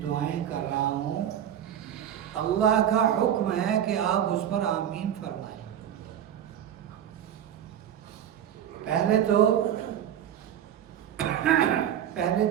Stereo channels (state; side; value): quieter; left; 10.1 dB